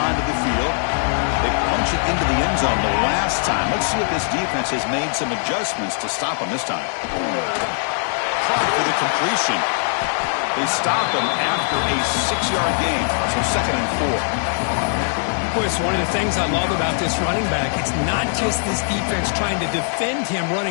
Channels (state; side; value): silent; right; 63 dB below the other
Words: the field. They punch it into the end zone the last time. Let's see if this defense has made some adjustments to stop them this time. Caught for the completion. They stop him after a 6-yard gain. So 2nd and 4. Boy, it's one of the things I love about this running back. It's not just this defense trying to defend him